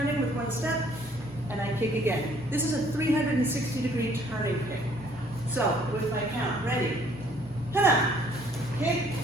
with one step and I kick again. This is a 360-degree turning kick. So with my count, ready? Hana. Kick,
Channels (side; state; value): both; normal; correlation 0.61